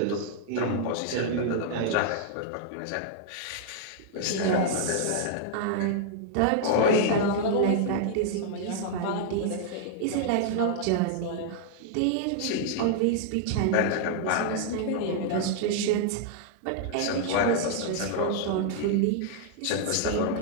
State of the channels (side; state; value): both; different; correlation -0.01